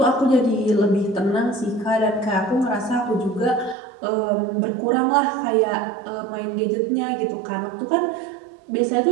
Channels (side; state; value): left; drops out; at 3.8 s